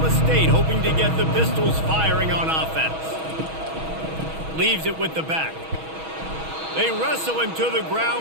State hoping to get the Pistols firing on offense. Leaves it with the back. They wrestle him to the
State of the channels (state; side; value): late; left; 6.2 ms